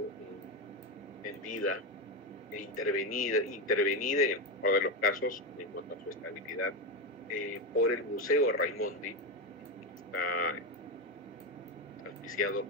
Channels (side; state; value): both; normal; correlation 0.12